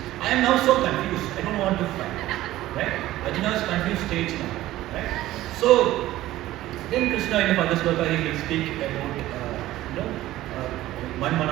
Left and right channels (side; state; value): left; quieter; 15.5 dB